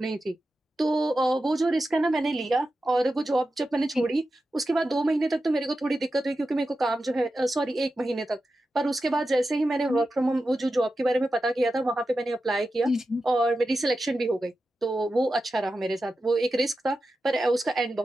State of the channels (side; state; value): both; normal; correlation 0.91